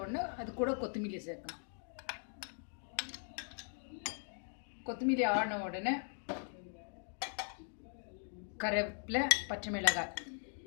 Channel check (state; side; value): silent; right; 51 dB below the other